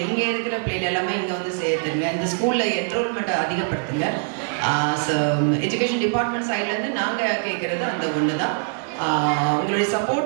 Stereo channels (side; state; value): left; silent; 63 dB below the other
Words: இங்கே இருக்கிற பிள்ளைகள் எல்லாமே இங்கே வந்து சேர்த்துருங்க. இந்த ஸ்கூலில் என்ரோல்மெண்ட்டை அதிகப்படுத்துங்க. ஸோ எஜுகேஷன் டிபார்ட்மெண்ட் சைட்லேருந்து நாங்கள் கேட்குறது அந்த ஒன்று தான். உங்களுடைய